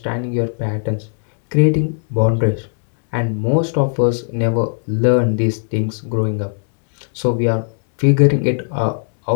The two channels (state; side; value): silent; right; digital silence